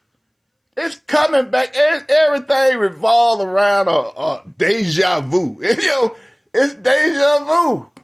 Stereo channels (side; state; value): both; identical; correlation 1.00